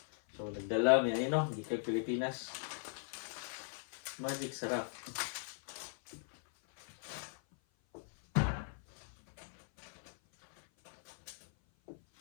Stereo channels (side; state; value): right; silent; 52 dB below the other